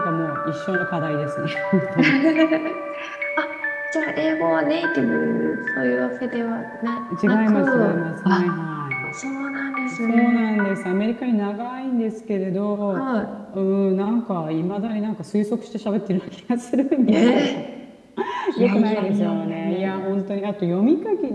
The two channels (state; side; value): identical; both; correlation 1.00